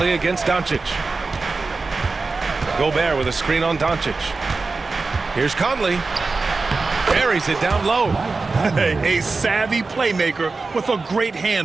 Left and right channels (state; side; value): quieter; left; 3.9 dB